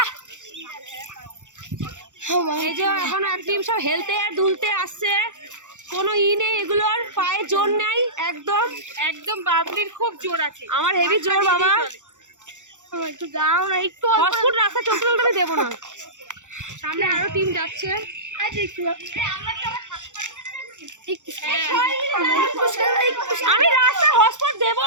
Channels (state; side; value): late; left; 0.85 ms